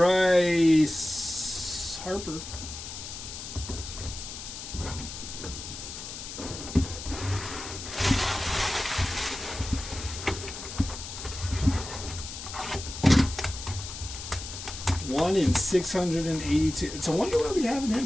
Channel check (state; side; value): noise; left; hiss, 9 dB below the sound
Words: Harper. One in 682. It's a wonder why we haven't